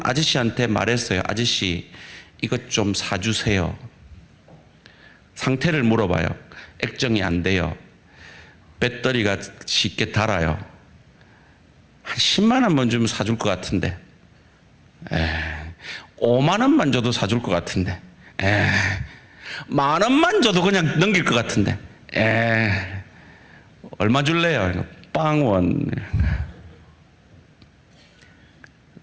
아저씨한테 말했어요. 아저씨, 이것 좀 사주세요. 상태를 물어봐요. 액정이 안 돼요. 배터리가 쉽게 닳아요. 한 10만 원만 주면 사줄 것 같은데, 5만 원만 줘도 사줄 것 같은데, 만 원만 줘도 그냥 넘길 것 같은데, 얼마 줄래요? 빵원.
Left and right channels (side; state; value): both; identical; correlation 1.00